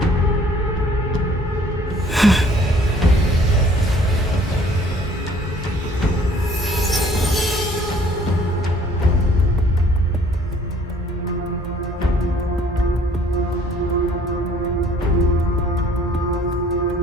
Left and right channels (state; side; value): normal; both; correlation 0.56